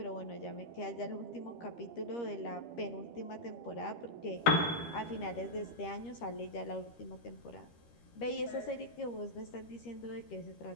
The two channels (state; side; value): late; right; 13 ms